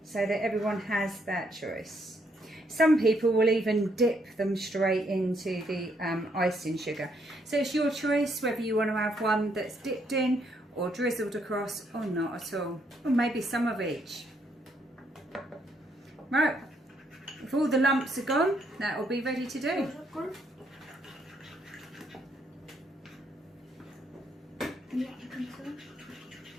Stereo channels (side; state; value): both; normal; correlation 0.72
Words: so that everyone has that choice. Some people will even dip them straight into the icing sugar. So it's your choice whether you want to have one that's dipped in or drizzled across or not at all. Or maybe some of each. Right, if all the lumps are gone, that will be ready to do. Yeah, I think so.